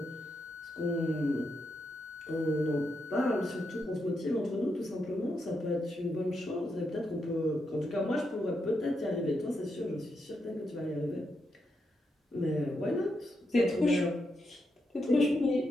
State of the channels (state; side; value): normal; both; correlation 0.83